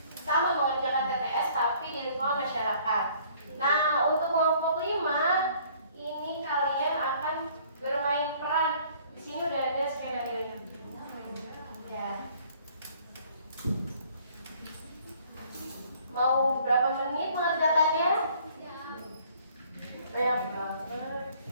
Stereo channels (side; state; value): both; inverted; correlation -0.58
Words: sama mengerjakan TTS tapi di lingkungan masyarakat. Nah, untuk kelompok 5 ini kalian akan bermain peran. Di sini udah ada skenario. Ya. Mau berapa menit mengerjakannya? Banyak banget.